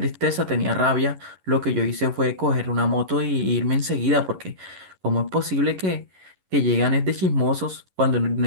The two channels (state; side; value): late; left; 11 ms